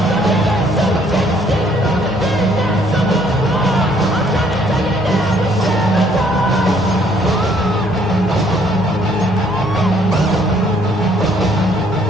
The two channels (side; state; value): both; normal; correlation 0.64